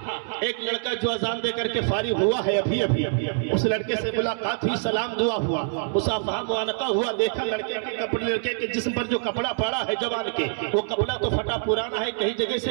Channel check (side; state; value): left; silent; 60 dB below the other